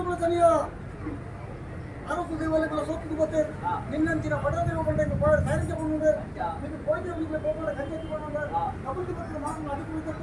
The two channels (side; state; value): both; identical; correlation 1.00